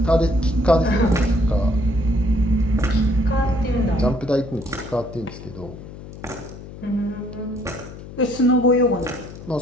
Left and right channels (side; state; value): left; noise; hum, 14 dB below the sound